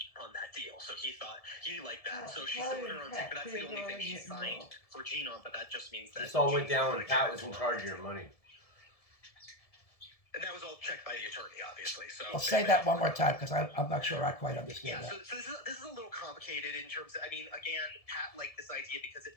on that deal. So he liked that. So she still went her own thing, but that's the only thing she signed for Jean on. But that just means that This all went Jean down when was Pat was in guarantor. charge of your money. And that was all checked by the attorney, obviously. So I'll say that one more time because I'm not sure I quite understand Yeah, that. so this is a little complicated in terms of, again, Pat liked this idea because it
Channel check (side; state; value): right; late; 1.7 ms